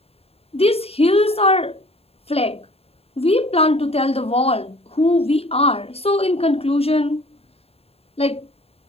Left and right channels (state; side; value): late; right; 0.29 ms